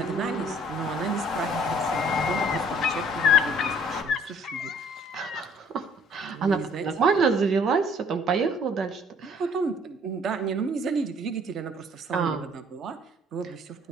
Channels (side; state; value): both; normal; correlation 0.58